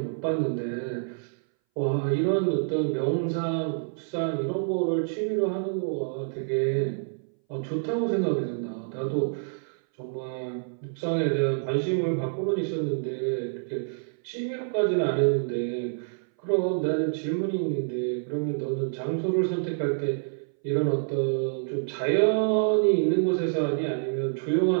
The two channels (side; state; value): left; silent; 60 dB below the other